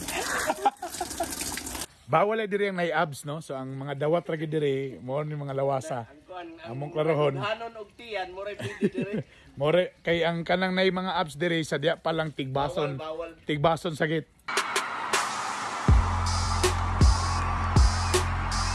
Bawal ay diri ang may abs, no? So, ang mga dawat ragi diri, mo ni mga lawasa. Among klarohon. Hanon og tiyan, mo ray pwede diri. More, kay ang kanang nay mga abs diri, sa diya palang tigbason. Bawal. Tigbason sagit.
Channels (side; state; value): both; identical; correlation 1.00